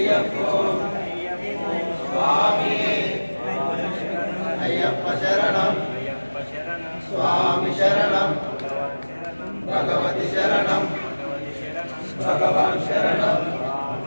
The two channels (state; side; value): inverted; both; correlation -1.00